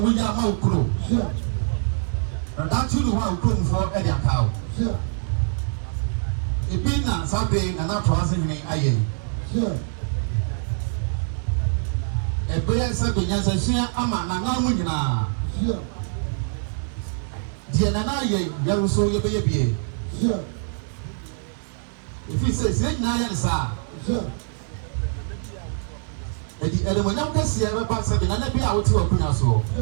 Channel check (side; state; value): left; silent; 62 dB below the other